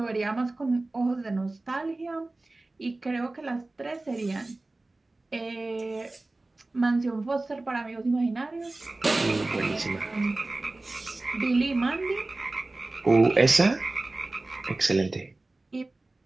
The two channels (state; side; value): quieter; left; 3.0 dB